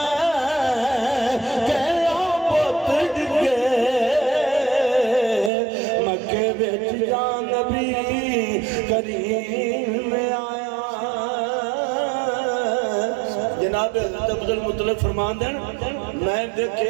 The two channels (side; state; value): left; drops out; at 5.5 s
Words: جان نبی کریم آیا جناب حضرت عبدالمطلب فرمان دیں میں